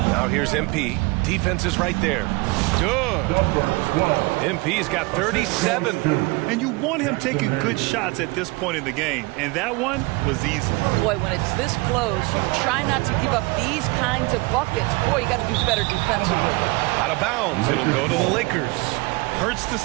Now here's MP. Defense is right there. Good. MP's got 37. And you want him taking good shots at this point in the game. And that one was easy. Boy, when it's this close, you try not to give up these kinds of buckets. Boy, you got to do better defensively. Out of bounds. It'll go to the Lakers. Hurts to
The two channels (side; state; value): left; quieter; 24.9 dB